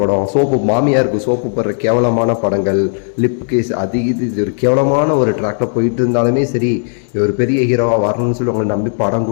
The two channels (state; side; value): silent; right; digital silence